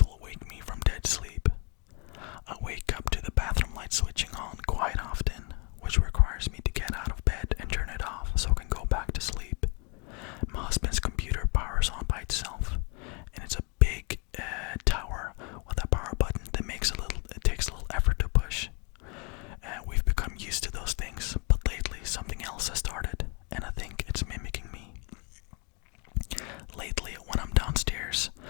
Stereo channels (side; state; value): right; quieter; 32.2 dB